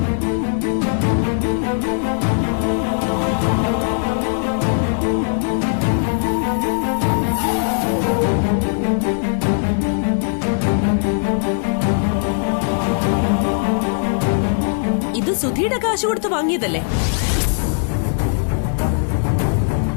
ഇത് സുധിയുടെ കാശ് കൊടുത്ത് വാങ്ങിയതല്ലേ?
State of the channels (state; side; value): silent; right; digital silence